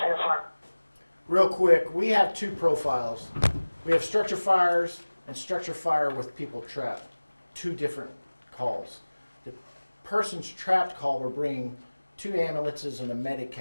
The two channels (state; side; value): inverted; both; correlation -1.00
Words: an apartment. Real quick, we have two profiles. We have structure fires and structure fire with people trapped. Two different calls. The person's trapped call, we're bringing 2 ambulances and a medic